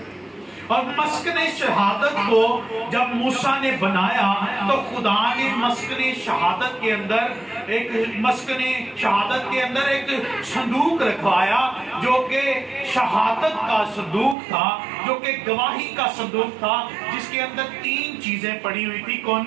اور مسکن شہادت کو جب موسیٰ نے بنایا تو خدا نے مسکن شہادت کے اندر ایک صندوق رکھوایا جو کہ شہادت کا صندوق تھا، جو کہ گواہی کا صندوق تھا، جس کے اندر 3 چیزیں پڑی ہوئی تھی.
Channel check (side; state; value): left; drops out; at 14.4 s